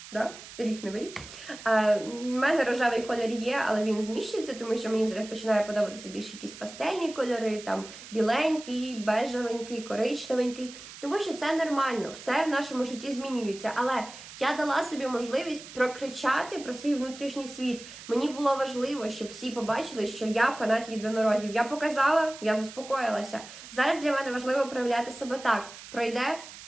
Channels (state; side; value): noise; right; hiss, 15 dB below the sound